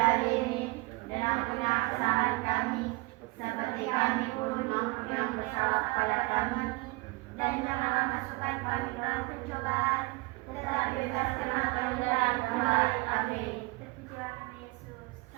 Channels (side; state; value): left; quieter; 25.3 dB